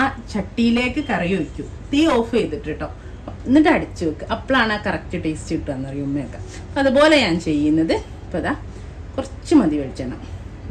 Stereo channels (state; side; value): identical; both; correlation 1.00